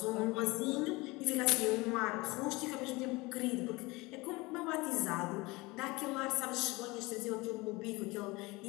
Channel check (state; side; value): quieter; right; 23.1 dB